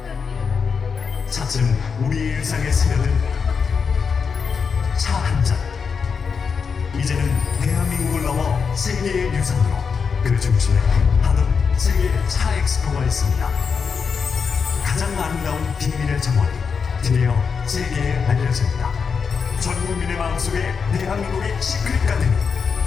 차츰 우리의 일상에 스며든 차 한 잔. 이제는 대한민국을 넘어 세계의 유산으로 그 중심에 하동 세계 차 엑스포가 있습니다. 가장 아름다운 비밀의 정원이 드디어 세계에 알려집니다. 전 국민의 마음속에 대한민국의 시크릿 가든이,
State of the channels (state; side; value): quieter; right; 5.8 dB